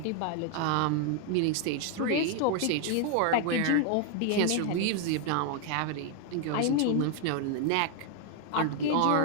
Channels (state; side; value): different; both; correlation 0.00